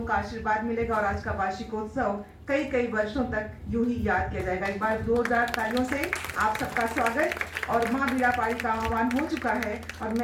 का आशीर्वाद मिलेगा और आज का वार्षिकोत्सव कई कई वर्षों तक यूं ही याद किया जाएगा। एक बार जोरदार तालियों से आप सबका स्वागत। और माँ बीणापाणी का आह्वान हो चुका है और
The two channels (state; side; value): identical; both; correlation 1.00